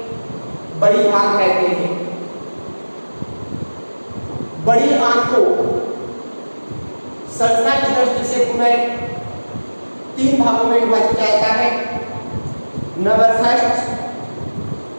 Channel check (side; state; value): both; inverted; correlation -1.00